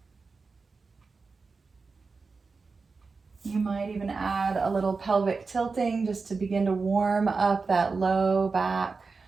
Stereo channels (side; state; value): left; quieter; 4.4 dB